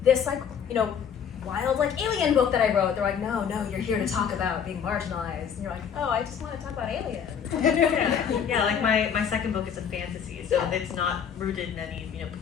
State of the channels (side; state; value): right; quieter; 7.7 dB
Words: this, like, you know, wild like alien book that I wrote, they're like, no, you're here to talk about being marginalized, and you're like, oh, I just want to talk about aliens. Yeah, like my second book is a fantasy, so it's not rooted in any, you know,